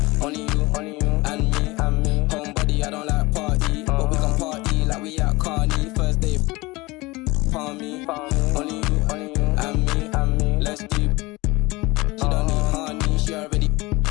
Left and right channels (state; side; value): quieter; right; 22.4 dB